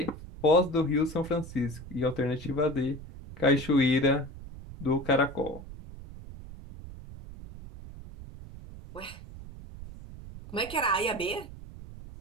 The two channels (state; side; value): noise; right; rumble, 14 dB below the sound